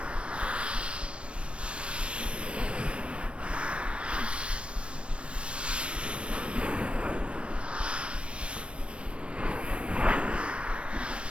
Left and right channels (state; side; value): late; left; 0.059 ms